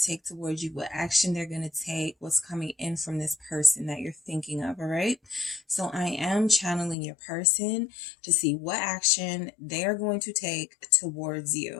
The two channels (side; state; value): right; drops out; at 7.0 s